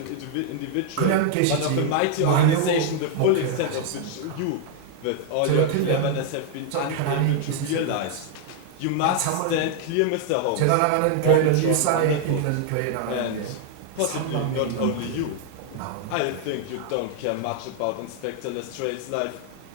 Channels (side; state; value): both; different; correlation 0.00